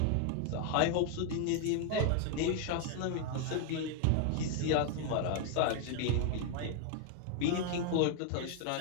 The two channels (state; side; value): different; both; correlation 0.00